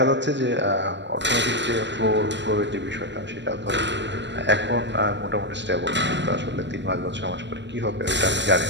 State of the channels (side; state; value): left; late; 0.52 ms